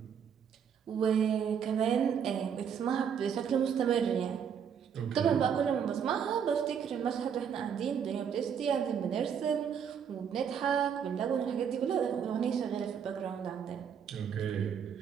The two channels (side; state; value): left; quieter; 7.7 dB